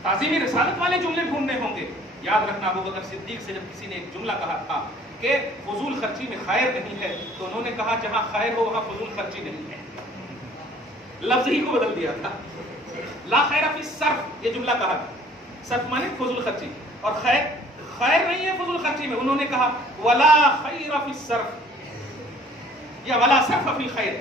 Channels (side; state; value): both; normal; correlation 0.54